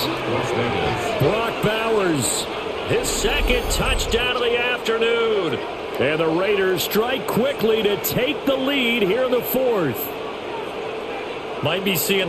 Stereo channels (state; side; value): identical; both; correlation 1.00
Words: Brock Bowers, his second touchdown of the afternoon. And the Raiders strike quickly to take the lead here in the fourth. Might be seeing